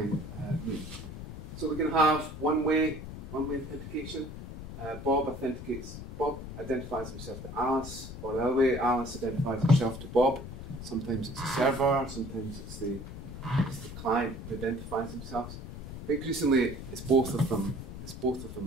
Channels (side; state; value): left; noise; rumble, 10 dB below the sound